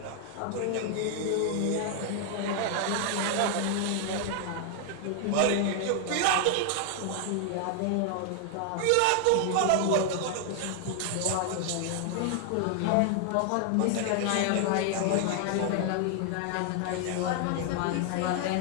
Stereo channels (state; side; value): different; both; correlation 0.00